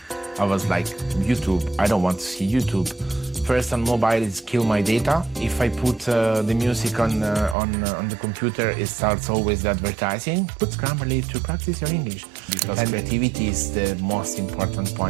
I was like, YouTube, I don't want to see YouTube. First on mobile is kill my data. If I put the music on the computer, it starts always the advertising. Put Grammarly to practice your English. Because creativity is the most important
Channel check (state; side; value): drops out; left; at 7.6 s